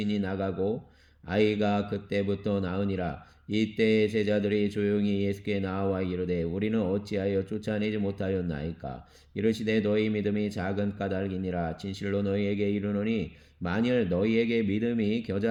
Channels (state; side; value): identical; both; correlation 1.00